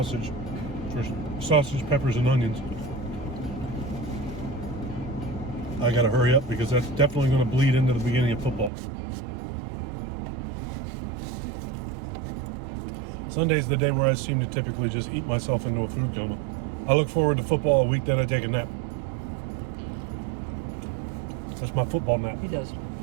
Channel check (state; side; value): drops out; left; at 8.7 s